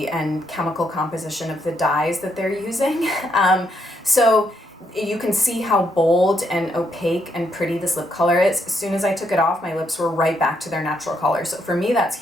and chemical composition of the dyes that they're using. So you can see how bold and opaque and pretty this lip color is. As soon as I took it off, my lips were right back to their natural color. So for me, that's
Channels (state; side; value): normal; both; correlation 0.76